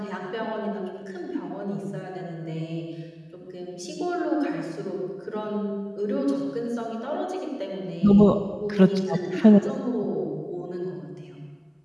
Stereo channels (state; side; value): identical; both; correlation 1.00